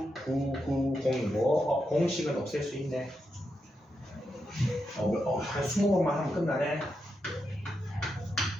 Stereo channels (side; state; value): both; normal; correlation 0.85